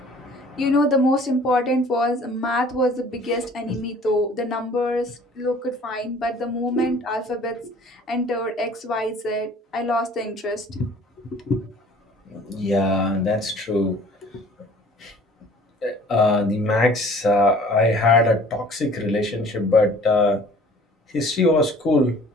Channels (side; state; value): both; normal; correlation 0.51